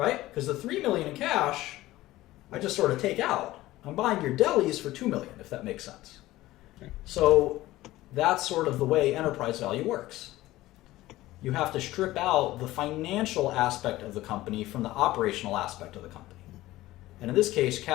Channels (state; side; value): quieter; right; 16.9 dB